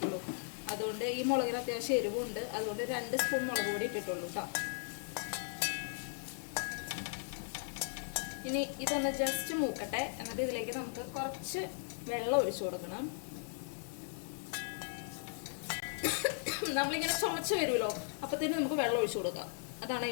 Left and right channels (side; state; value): right; silent; digital silence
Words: അതുകൊണ്ട് ഈ മുളകിന് അത്യാവശ്യം എരിവുണ്ട്. അതുകൊണ്ട് 2 സ്പൂൺ മുളക് പൊടി ഇട്ടിട്ടുള്ളൂ കേട്ടോ. ഇനി ഇതൊന്ന് ജസ്റ്റ് മൂക്കട്ടെ. എന്നിട്ട് ഇതിലേക്ക് നമുക്ക് കുറച്ച് വെള്ളം ഒഴിച്ചു കൊടുക്കണം. നമ്മളിങ്ങനെ ചുമച്ച് വരുമല്ലോ, അപ്പത്തേനും നമുക്ക് വെള്ളം ഒഴിച്ചു കൊടുക്കാം. അതാണ്